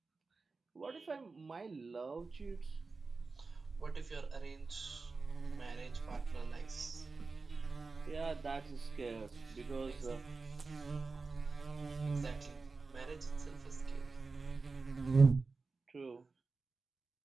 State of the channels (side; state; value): left; quieter; 4.1 dB